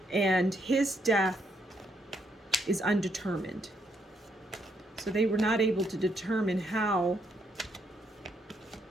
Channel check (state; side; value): normal; both; correlation 0.74